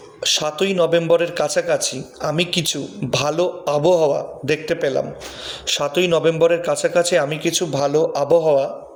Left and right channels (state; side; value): identical; both; correlation 1.00